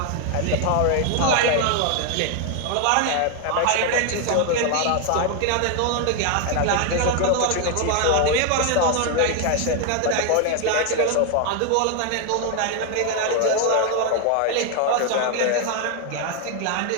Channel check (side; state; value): both; different; correlation 0.01